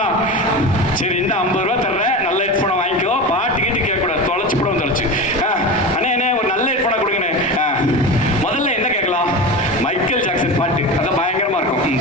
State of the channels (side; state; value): both; normal; correlation 0.26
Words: சரி, இந்த 50 ரூபா தர்றேன், நல்ல ஹெட்ஃபோனை வாங்கிக்கோ. பாட்டு கேட்டு கேட்கக்கூடாது, தொலைச்சு போட தொலைச்சு. அண்ணே ஒரு நல்ல ஹெட்ஃபோனை கொடுங்கண்ணே. முதல்ல என்ன கேட்கலாம்? மைக்கேல் ஜாக்சன் பாட்டு, அதான் பயங்கரமா இருக்கும்,